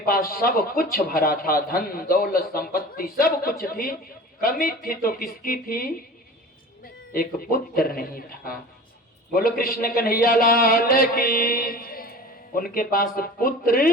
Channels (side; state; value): both; normal; correlation 0.37